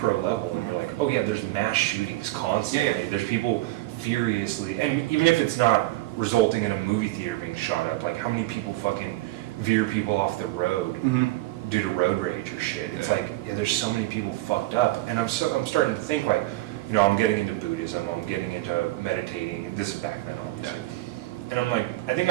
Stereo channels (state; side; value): quieter; left; 18.1 dB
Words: level, and you're like, oh yeah, there's mass shootings constantly. Yeah. There's people furiously, and even if it's not resulting in a movie theater being shot up, like how many people fucking veer people off the road due to road rage or shit. It's like, yeah, there's so many people fucked up, and I'm starting to think like, I'm getting into Buddhism, I'm getting into meditating, and this is back then obviously. And I'm like, I think